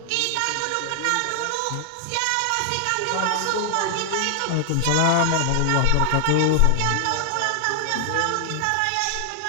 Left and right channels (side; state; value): both; different; correlation 0.00